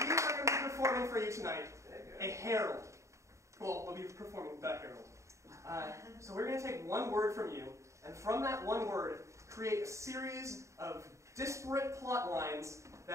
we are going to be performing for you tonight a herald. Well, we'll be performing the herald. So we're going to take one word from you, and from that one word, create a series of disparate plot lines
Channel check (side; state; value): left; late; 0.14 ms